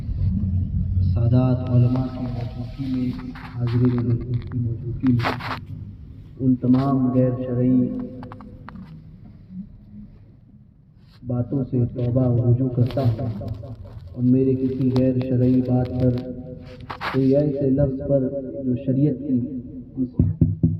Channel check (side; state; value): both; identical; correlation 1.00